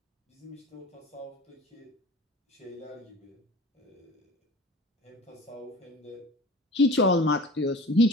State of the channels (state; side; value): normal; both; correlation 0.40